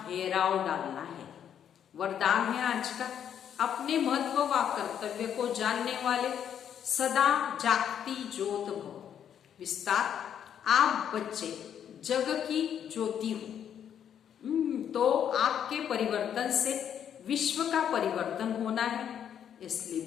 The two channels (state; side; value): quieter; right; 9.0 dB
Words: घेराव डालना है। वरदान है आज का अपने महत्व व कर्तव्य को जानने वाले सदा जागती ज्योत भव। विस्तार आप बच्चे जग की ज्योति हो। तो आपके परिवर्तन से विश्व का परिवर्तन होना है। इसलिए